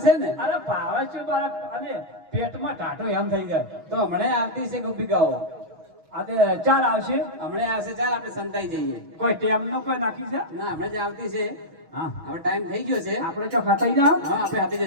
છે ને? અરે ભાવે છે મારા અને પેટમાં ટાટો એમ થઈ જાય. તો હમણાં આવતી છે ગોપિકાઓ. આજે ચાલ આવશે. હમણાં આવશે. ચાલ આપણે સંતાઈ જઈએ. કોઈ ટેમનો કોઈ નાખી છે? ના હમણાં જ આવતી છે. હા હવે ટાઈમ થઈ ગયો છે. આપણે ચો ખતાઈ જાવ. હા આપણે હાથી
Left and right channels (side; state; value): left; late; 6.2 ms